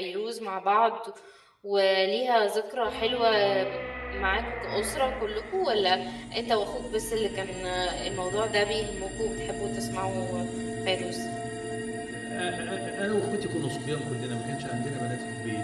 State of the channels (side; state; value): both; identical; correlation 1.00